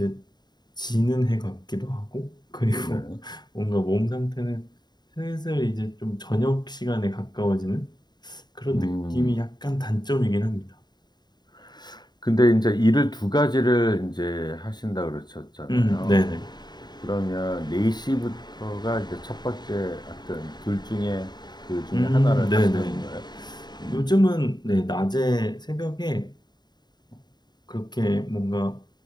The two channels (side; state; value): right; late; 0.20 ms